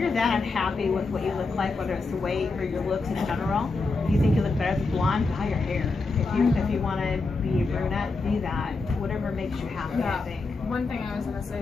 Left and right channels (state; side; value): quieter; right; 3.8 dB